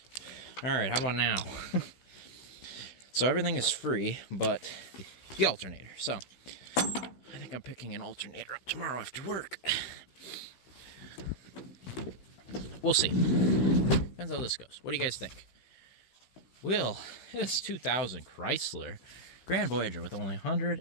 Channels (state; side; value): late; right; 16 ms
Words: All right, how about now? So everything is free, but the alternator. So I think I'm picking an alternator up tomorrow after work. We'll see. Depends how this goes. What do you guys think? Will this 2000 Chrysler Grand Voyager with only